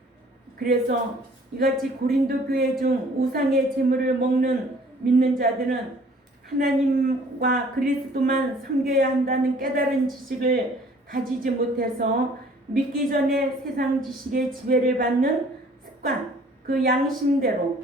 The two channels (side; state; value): both; normal; correlation 0.55